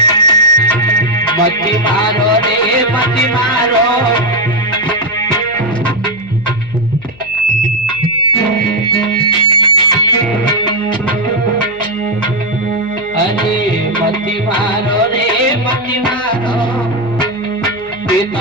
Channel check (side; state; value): left; noise; hum, 24 dB below the sound